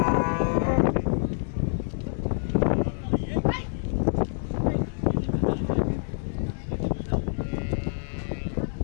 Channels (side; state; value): right; silent; digital silence